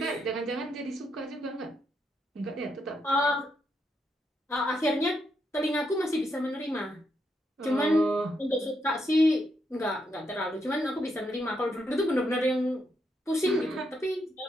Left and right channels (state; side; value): normal; both; correlation 0.80